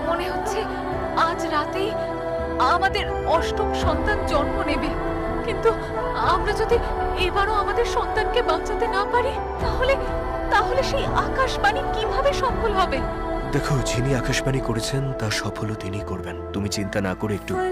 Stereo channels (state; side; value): identical; both; correlation 1.00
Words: মনে হচ্ছে আজ রাতেই আমাদের অষ্টম সন্তান জন্ম নেবে। কিন্তু আমরা যদি এবারও আমাদের সন্তানকে বাঁচাতে না পারি, তাহলে তাহলে সেই আকাশবাণী কিভাবে সফল হবে? দেখো, যিনি আকাশবাণী করেছেন তা সফলও তিনি করবেন। তুমি চিন্তা না করে একটু